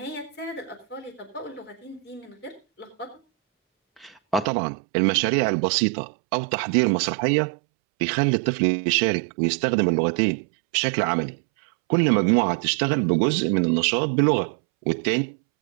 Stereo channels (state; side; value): drops out; left; at 4.5 s